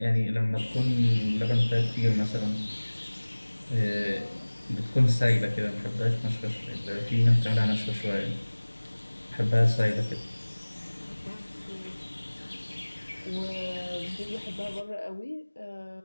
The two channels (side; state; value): both; inverted; correlation -1.00